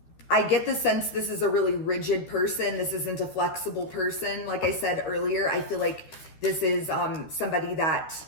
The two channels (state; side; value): late; right; 13 ms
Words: I get the sense this is a really rigid person. This isn't a flexible person. Like I said earlier, I feel like this is somebody that